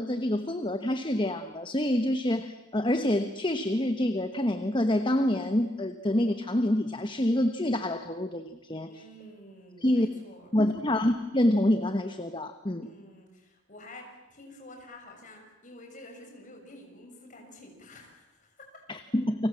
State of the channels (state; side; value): normal; both; correlation 0.80